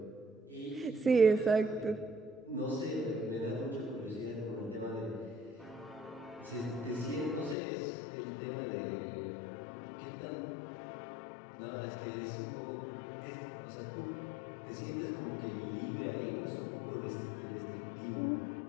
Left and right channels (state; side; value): drops out; right; at 7.6 s